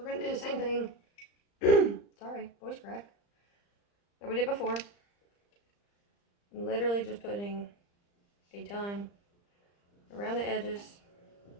going to do the same thing. Sorry, voice crack. That we did before. I'm literally just putting a ton around the edges.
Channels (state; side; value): late; right; 35 ms